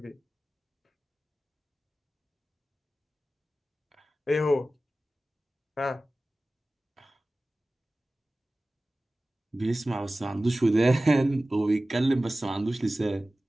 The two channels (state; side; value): normal; both; correlation 0.96